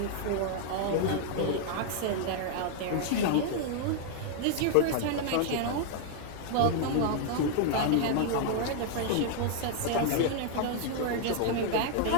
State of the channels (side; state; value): both; different; correlation 0.00